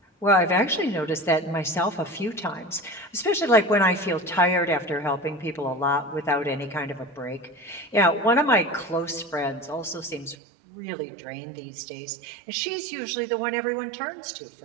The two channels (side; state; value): left; drops out; at 10.4 s